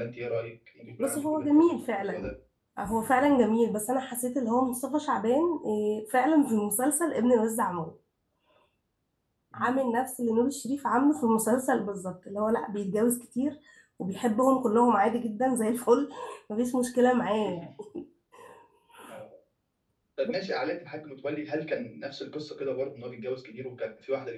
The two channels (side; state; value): both; identical; correlation 1.00